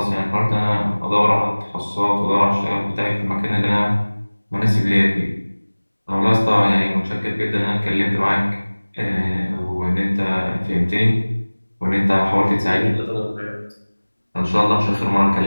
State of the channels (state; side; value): inverted; both; correlation -1.00